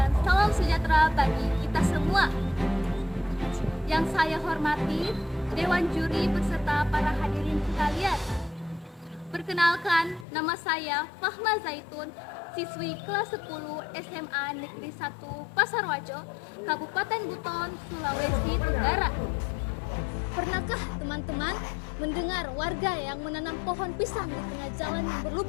salam sejahtera bagi kita semua. Yang saya hormati Dewan Juri beserta para hadirin sekalian. Perkenalkan, nama saya Fahma Zaitun, siswi kelas 10 SMA Negeri 1 Pasarwajo, Kabupaten Buton, Sulawesi Tenggara. Pernahkah teman-teman mendengar warga yang menanam pohon pisang di tengah jalan yang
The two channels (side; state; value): right; drops out; at 10.2 s